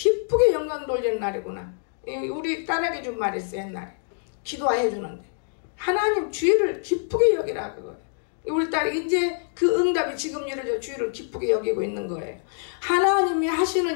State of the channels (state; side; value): silent; right; digital silence